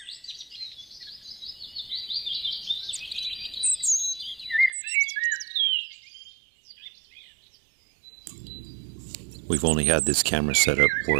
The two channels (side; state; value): left; drops out; at 4.7 s